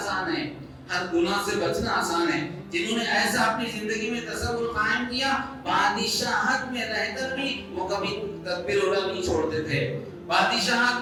ہے، ہر گناہ سے بچنا آسان ہے. جنہوں نے ایسا اپنی زندگی میں تصور قائم کیا، بادشاہت میں رہ کر بھی وہ کبھی تکبیر اولیٰ نہیں چھوڑتے تھے،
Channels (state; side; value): identical; both; correlation 1.00